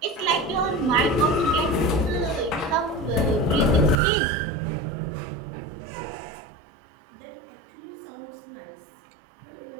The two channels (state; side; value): drops out; left; at 4.0 s